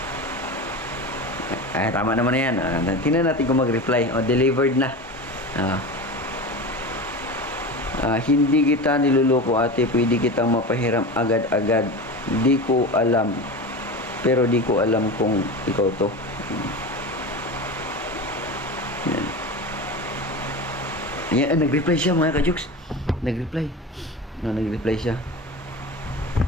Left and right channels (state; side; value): normal; both; correlation 0.28